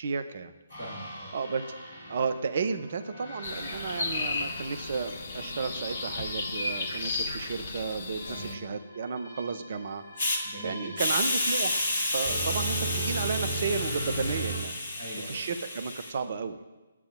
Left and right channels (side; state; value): both; inverted; correlation -0.71